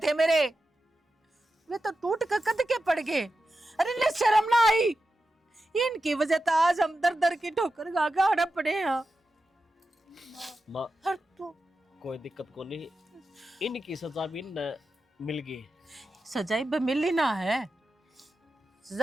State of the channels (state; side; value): normal; both; correlation 0.91